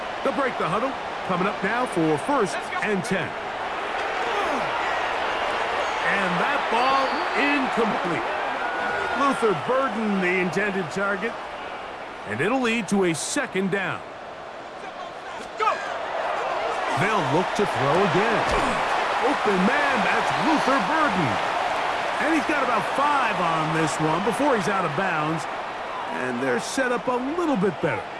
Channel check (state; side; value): identical; both; correlation 1.00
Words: They'll break the huddle. Coming up now for 1st and 10. And that ball incomplete. Luther Burden, the intended target. And it'll lead to a 2nd down. They'll look to throw again. Open man, that's Luther Burden. And he's got about 5 on this one before he's out of bounds. And they're set up a little bit better